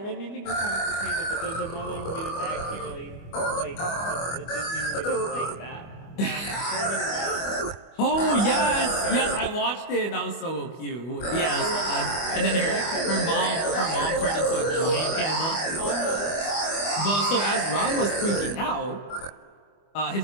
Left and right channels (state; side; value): late; right; 25 ms